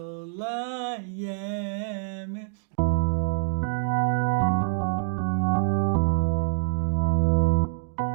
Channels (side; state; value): left; silent; digital silence